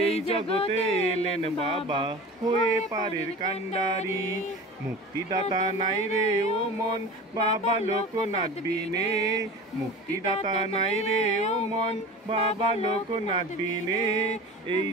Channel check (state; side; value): normal; both; correlation 0.35